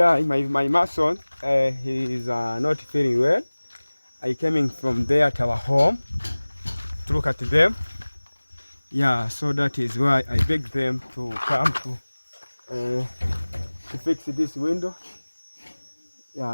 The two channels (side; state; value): both; inverted; correlation -1.00